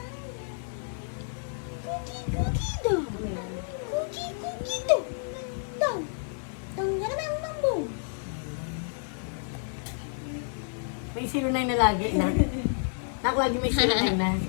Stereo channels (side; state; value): right; silent; 58 dB below the other